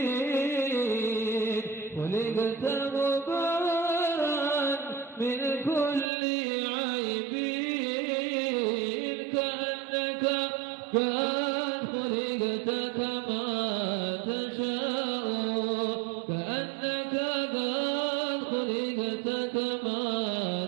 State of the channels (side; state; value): left; drops out; at 6.1 s